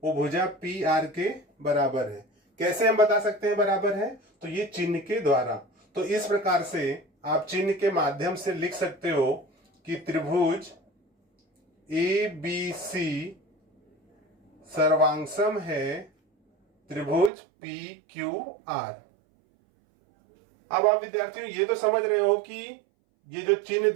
वो भुजा PR के बराबर है। कैसे हम बता सकते हैं बराबर है, तो ये चिन्ह के द्वारा। तो इस प्रकार से आप चिन्ह के माध्यम से लिख सकते हो कि त्रिभुज ABC सर्वांगसम है त्रिभुज PQR। अब आप विद्यार्थियों ये तो समझ रहे हो कि ये जो चिन्ह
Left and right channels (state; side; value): drops out; left; at 17.3 s